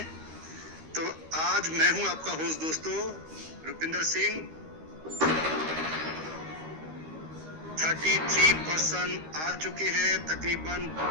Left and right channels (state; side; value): late; left; 13 ms